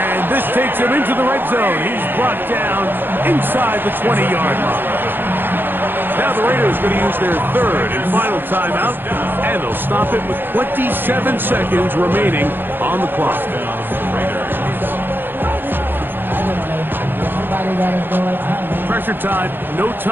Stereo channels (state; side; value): late; left; 0.099 ms